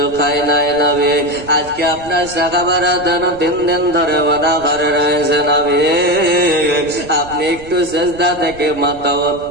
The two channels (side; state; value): right; noise; rumble, 19 dB below the sound